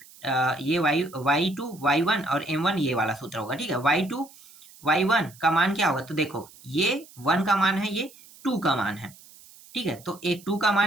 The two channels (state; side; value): noise; right; hiss, 23 dB below the sound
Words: ये y2 y1 और m1 ये वाला सूत्र होगा, ठीक है। y2 y1 का मान क्या होगा, तो देखो ये 1 का मान है, ये 2 का मान है, ठीक है। तो एक 2 का